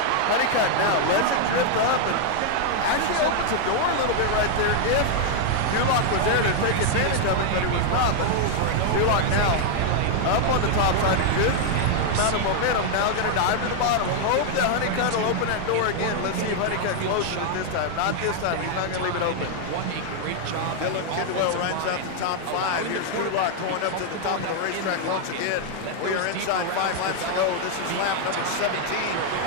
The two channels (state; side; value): different; both; correlation 0.00